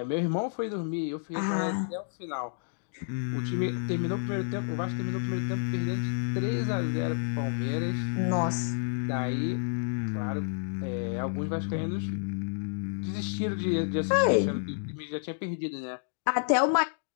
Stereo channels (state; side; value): silent; right; digital silence